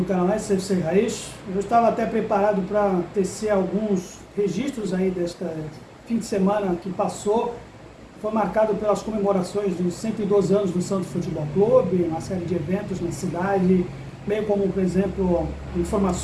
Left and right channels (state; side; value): identical; both; correlation 1.00